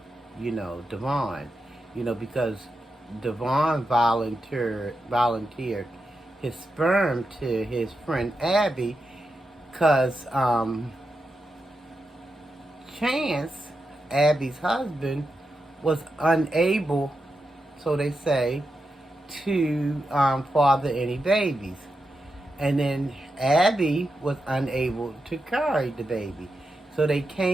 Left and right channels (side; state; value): both; normal; correlation 0.88